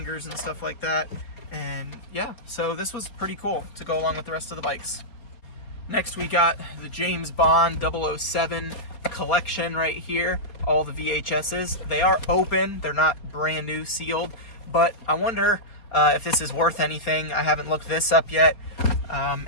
and stuff like that. And yeah, so this was pretty cool to go along with the rest of the bikes. Next, we got the James Bond 007 collection right here. All the VHSs. They are open. They're not brand new sealed, but I wonder if this is worth anything. I haven't looked this up yet. And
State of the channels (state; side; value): late; right; 4.3 ms